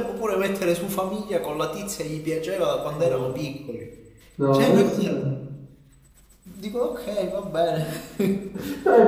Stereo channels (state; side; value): identical; both; correlation 1.00